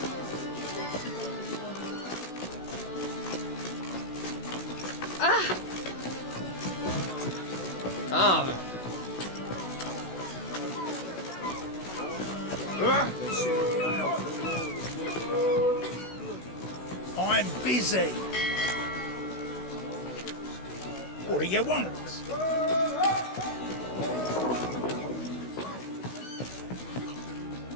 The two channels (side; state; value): right; late; 16 ms